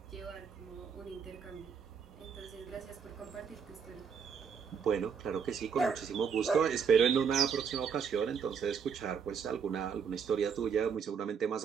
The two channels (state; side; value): quieter; left; 6.6 dB